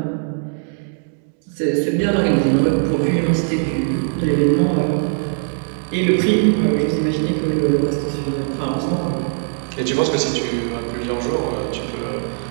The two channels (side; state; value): left; silent; 64 dB below the other